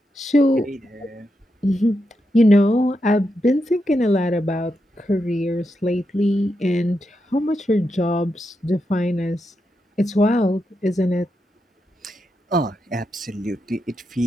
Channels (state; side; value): normal; both; correlation 0.85